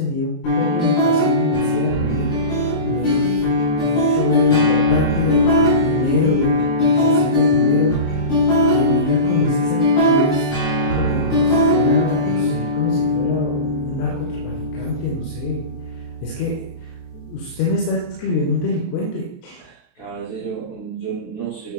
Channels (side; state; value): right; late; 23 ms